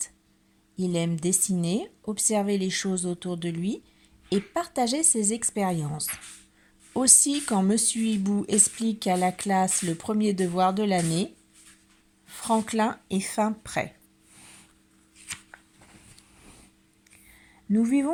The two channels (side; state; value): both; identical; correlation 1.00